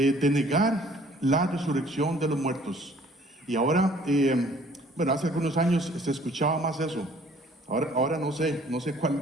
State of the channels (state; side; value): normal; both; correlation 0.56